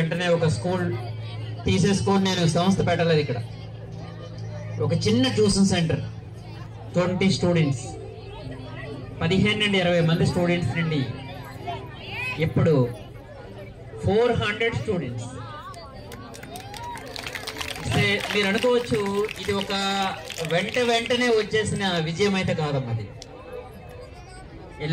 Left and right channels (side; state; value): both; identical; correlation 1.00